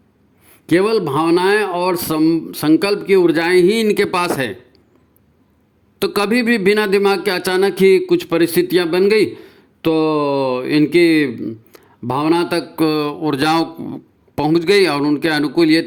केवल भावनाएं और संकल्प की ऊर्जाएं ही इनके पास है। तो कभी भी बिना दिमाग के अचानक ही कुछ परिस्थितियां बन गई तो इनकी भावना तक ऊर्जाओं पहुंच गई और उनके अनुकूल ये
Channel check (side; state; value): both; identical; correlation 1.00